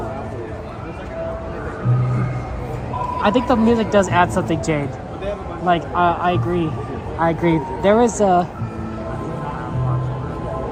I think the music does add something, Jade. Like, I agree. There is a...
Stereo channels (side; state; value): both; identical; correlation 1.00